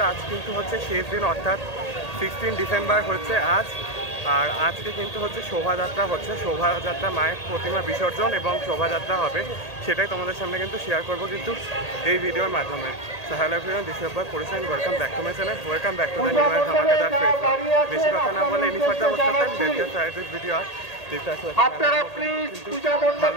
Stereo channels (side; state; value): right; late; 1.8 ms